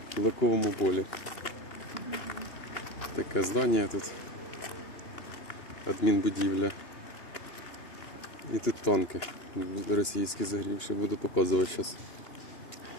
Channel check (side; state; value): right; late; 2.9 ms